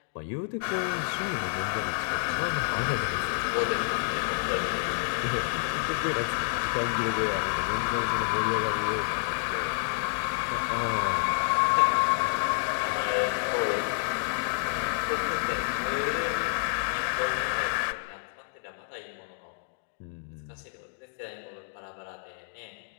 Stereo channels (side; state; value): right; silent; digital silence